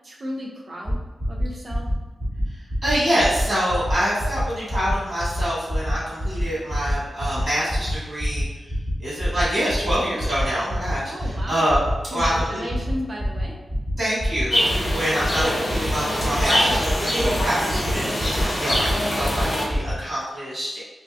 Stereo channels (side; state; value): both; normal; correlation 0.92